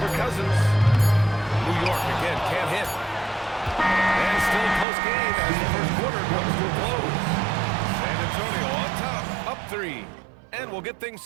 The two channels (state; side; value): drops out; left; at 4.9 s